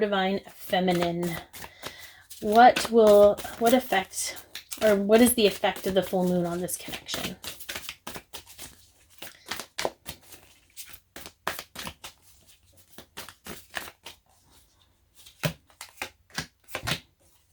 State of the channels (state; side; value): identical; both; correlation 1.00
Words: feminine. What effect, or what is the effect of the full moon on this connection?